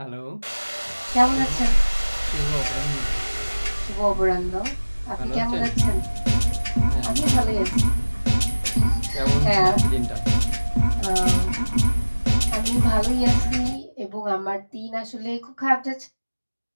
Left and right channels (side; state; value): both; inverted; correlation -1.00